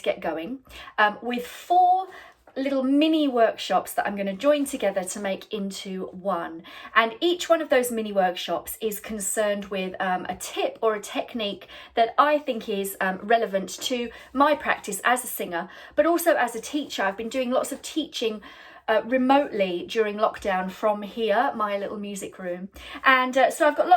get going with 4 little mini workshops that I'm going to join together to make into one. And each one of those mini workshops is concerned with a tip or a technique that I think is relevant to my practice as a singer, but also as a teacher. I've been doing lots of teaching remotely during lockdown from here, my little music room. And so I've got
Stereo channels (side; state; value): both; identical; correlation 1.00